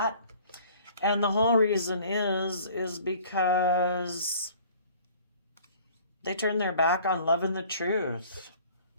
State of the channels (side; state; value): both; inverted; correlation -0.51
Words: And the whole reason is because They turn their back on loving the truth.